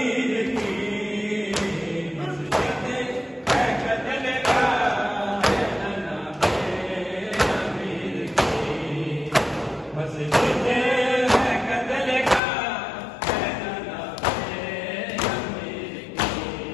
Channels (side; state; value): right; drops out; at 12.4 s